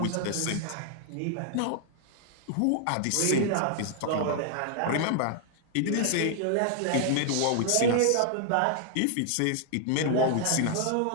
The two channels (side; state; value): both; different; correlation 0.00